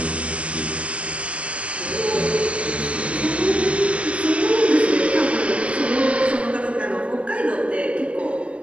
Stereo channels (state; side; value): late; left; 0.062 ms